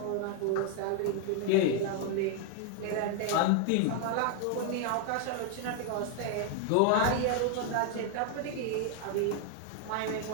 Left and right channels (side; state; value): both; different; correlation 0.00